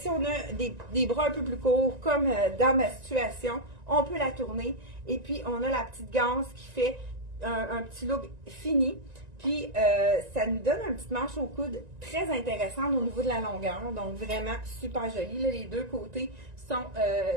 on a des bras un peu plus courts, comme dans ma situation, on peut la tourner. Et puis, on a la petite ganse qui fait un petit look fini. Puis, ça nous donne une petite manche au coude très intéressante au niveau de la longueur. Donc, vraiment super joli. Là, les deux côtés sont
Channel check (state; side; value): late; left; 1.9 ms